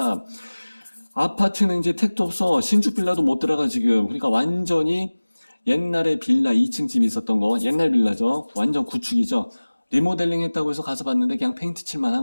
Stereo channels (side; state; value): both; inverted; correlation -1.00